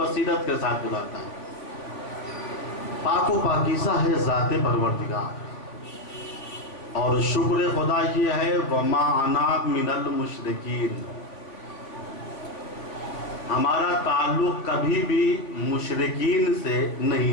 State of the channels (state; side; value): late; right; 3.5 ms